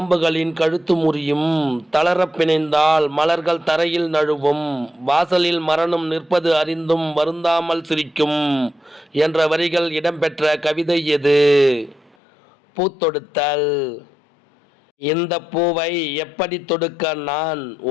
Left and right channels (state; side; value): drops out; right; at 12.2 s